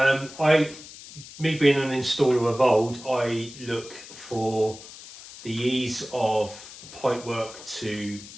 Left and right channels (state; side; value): noise; left; hiss, 16 dB below the sound